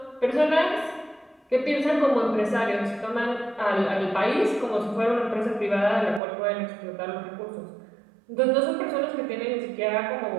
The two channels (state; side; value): drops out; left; at 6.2 s